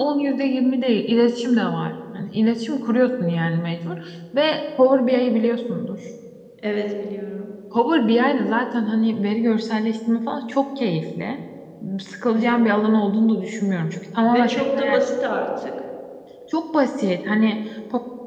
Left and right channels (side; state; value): both; identical; correlation 1.00